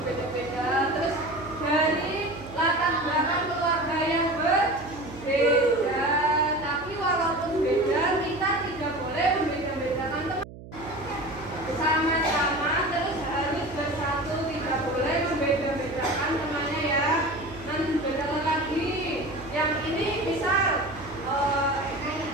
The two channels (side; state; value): right; noise; hum, 16 dB below the sound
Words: Terus dari latar belakang keluarga yang berbeda. Tapi walaupun beda, kita tidak boleh membeda-bedakan teman. Sama-sama terus harus bersatu, tidak boleh membeda-bedakan temannya ya. Nanti bedakan lagi. Yang ini misal